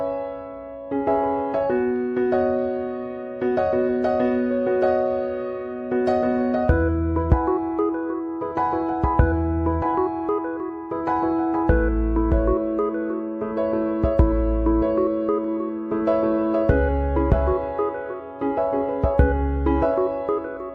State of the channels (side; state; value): both; identical; correlation 1.00